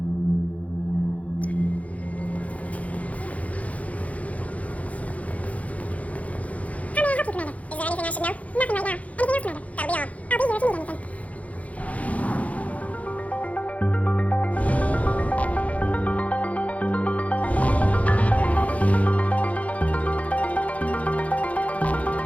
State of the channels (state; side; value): late; right; 0.067 ms